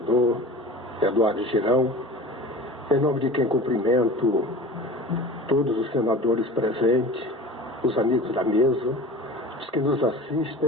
Eduardo Girão, em nome de quem cumprimento todos os senadores presentes, os amigos da mesa, os que nos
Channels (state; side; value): normal; both; correlation 0.37